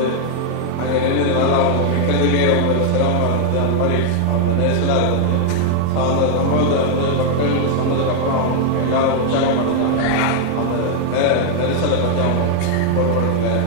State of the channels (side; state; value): both; different; correlation 0.00